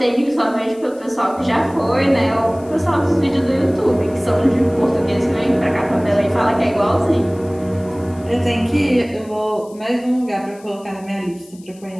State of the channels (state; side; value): noise; left; hiss, 26 dB below the sound